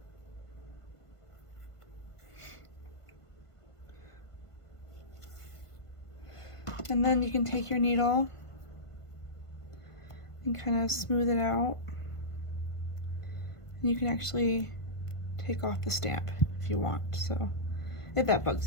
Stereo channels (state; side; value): late; right; 1.5 ms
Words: And then you can take your needle and kind of smooth it out. And you can actually take off the stamp if you want, so if that bugs